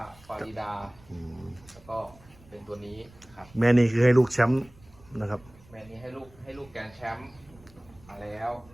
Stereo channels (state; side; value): noise; right; rumble, 24 dB below the sound